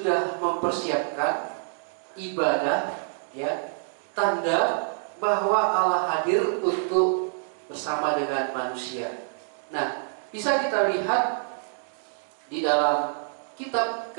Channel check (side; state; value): left; silent; digital silence